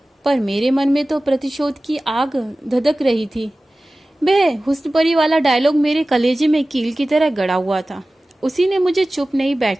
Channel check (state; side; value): normal; both; correlation 0.97